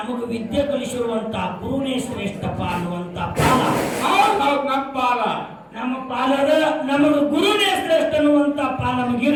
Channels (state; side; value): identical; both; correlation 1.00